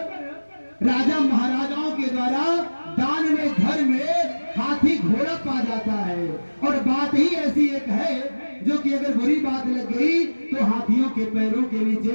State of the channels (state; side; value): inverted; both; correlation -1.00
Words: राजा महाराजाओं के द्वारा दान में घर में हाथी घोड़ा पा जाता है, और बात ही ऐसी एक है जो कि अगर बुरी बात लग गई तो हाथियों के पैरों के